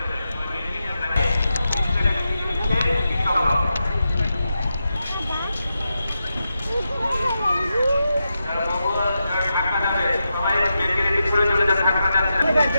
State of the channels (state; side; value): inverted; both; correlation -0.88